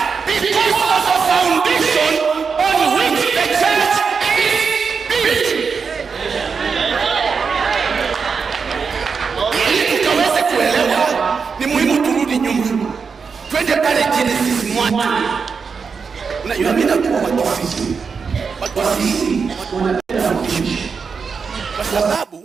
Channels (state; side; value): quieter; left; 5.6 dB